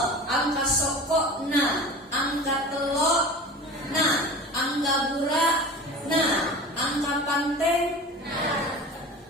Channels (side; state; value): both; normal; correlation 0.35